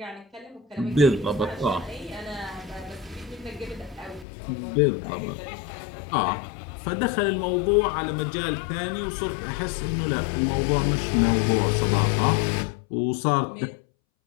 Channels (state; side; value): drops out; right; at 4.2 s